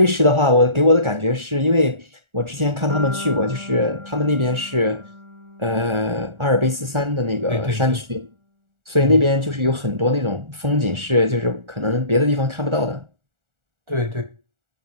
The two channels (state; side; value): late; left; 1.4 ms